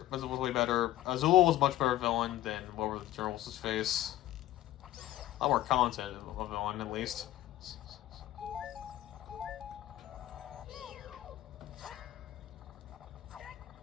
Was way better. Azula was much better villain than what were the Journals' face. A lot more content of a villain, at least.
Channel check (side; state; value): right; quieter; 14.3 dB